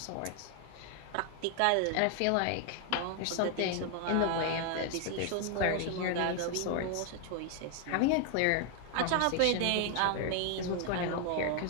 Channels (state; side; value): different; both; correlation 0.00